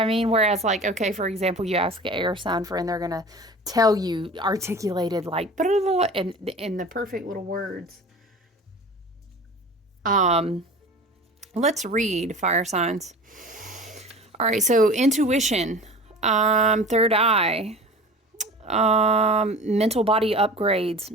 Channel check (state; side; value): normal; both; correlation 0.38